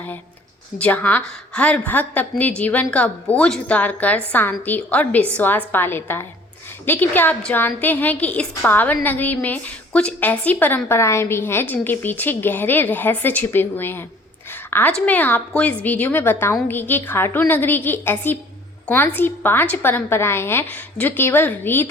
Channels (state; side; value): normal; both; correlation 0.53